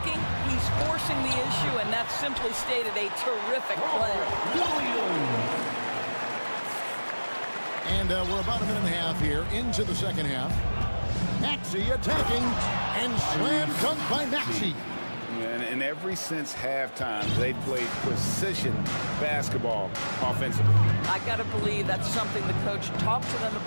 he's forcing the issue, and that's simply stated a terrific play. And we're about a minute and a half here into the second half. Maxey attacking and slam dunk by Maxey. And ever since halftime, they played precision basketball offensively. I got to believe that's something the coach talked to them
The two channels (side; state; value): both; inverted; correlation -1.00